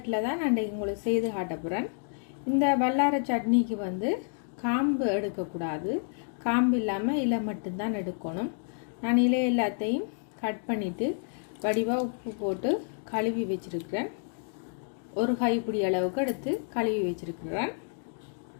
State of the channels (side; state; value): right; silent; 58 dB below the other